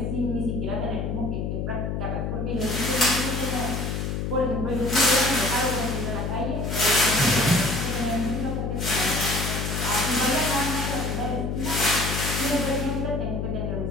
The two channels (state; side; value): noise; left; hum, 2 dB below the sound